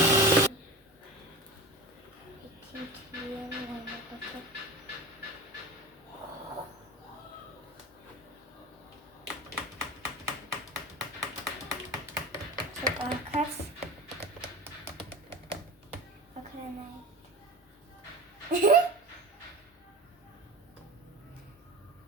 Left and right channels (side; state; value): both; normal; correlation 0.31